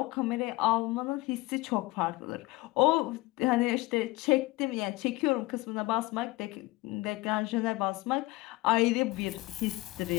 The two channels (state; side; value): quieter; right; 20.5 dB